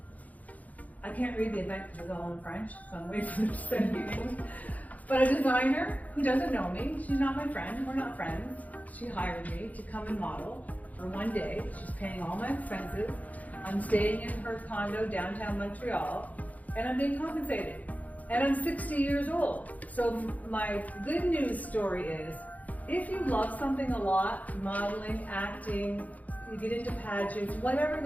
I can't read the event because it's all in French, so I'm waiting for them to send me English. But a designer who doesn't know me, she's not my friend, we're not friends. She hired me to come and model for one day. She's paying all my expenses. I'm staying in her condo downtown Montreal, and I'm being compensated. And I'm 60 years old. So my good news story is, if you love something a lot, modeling, acting, you get into pageants, whatever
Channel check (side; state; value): right; late; 0.076 ms